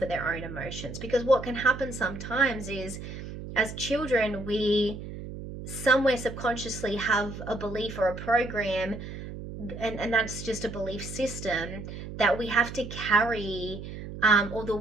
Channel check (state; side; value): noise; right; hum, 10 dB below the sound